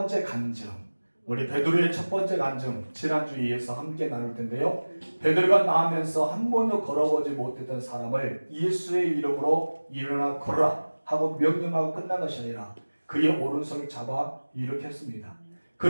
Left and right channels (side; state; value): both; inverted; correlation -1.00